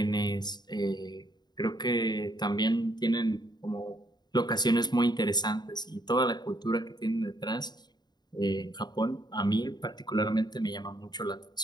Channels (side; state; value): right; late; 0.20 ms